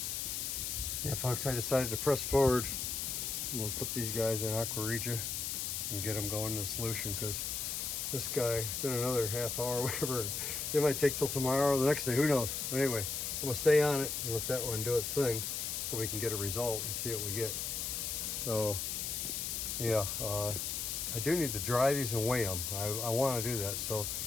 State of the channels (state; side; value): noise; left; hiss, 2 dB below the sound